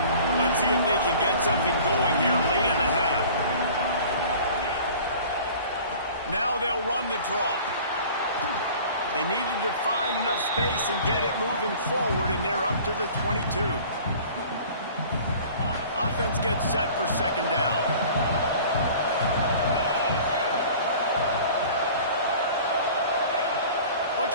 Let's see if they can get something going here late in the half. Now they'll run the draw. They needed to find enough space and get it moving forward, and they're up to the 22. Offense gets set for 2nd down.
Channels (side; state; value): both; inverted; correlation -0.45